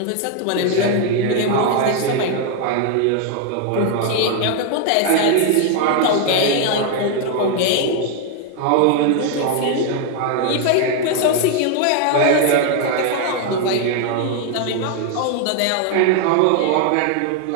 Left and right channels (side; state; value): both; different; correlation 0.01